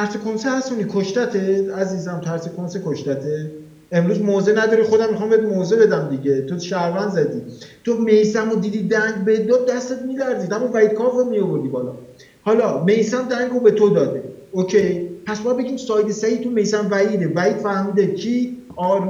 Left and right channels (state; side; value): identical; both; correlation 1.00